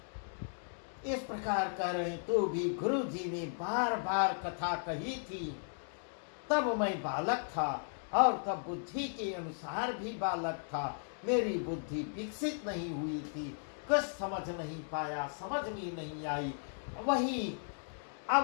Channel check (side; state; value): right; silent; digital silence